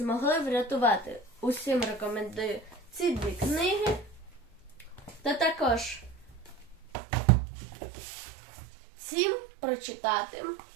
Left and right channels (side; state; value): left; drops out; at 6.8 s